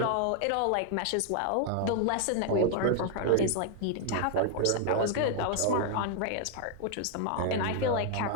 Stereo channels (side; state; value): both; different; correlation 0.00